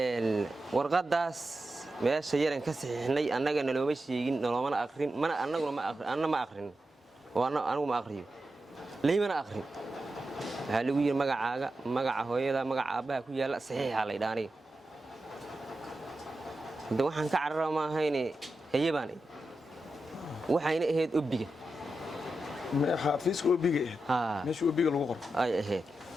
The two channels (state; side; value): normal; both; correlation 0.90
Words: warqadaas meesha yaran ka saxiixnay annaga nalooma sheegin naloomana aqrin mana annaguna ma aqrin oo anigu ma aqriyo laymana aqrin waxaa lagu yidhi magacaaga magaca hooyada magaca aabbaha ku yaalla saxiixa la ydhaa aniga hadda waxaan ka carara ma ahayne haye baan id waxayna ahayd obiga xafiiska obiga ahayd meesha obiga lagu qoro ay ahayd